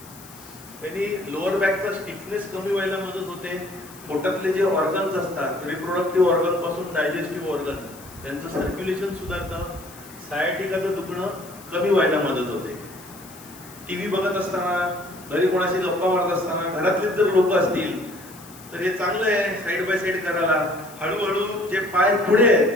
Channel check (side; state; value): left; noise; hiss, 20 dB below the sound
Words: त्यांनी लोअर बॅकचा स्टिफनेस कमी व्हायला मदत होते. पोटातले जे ऑर्गन्स असतात, रिप्रोडक्टिव्ह ऑर्गन पासून डायजेस्टिव्ह ऑर्गन, त्यांचं सर्क्युलेशन सुधारतं. सायटिकाचं दुखणं कमी व्हायला मदत होते. टीव्ही बघत असताना, घरी कोणाशी गप्पा मारत असताना, घरातलेच जर लोक असतील तर हे चांगलं आहे साईड बाय साईड करायला. हळूहळू जे पाय पुढे